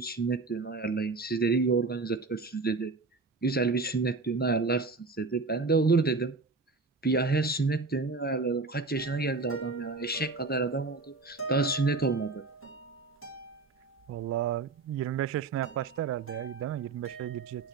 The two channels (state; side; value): quieter; left; 4.0 dB